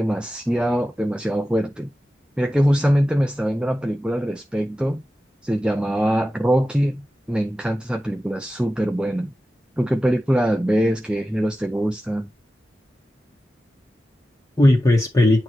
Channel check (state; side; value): normal; both; correlation 0.93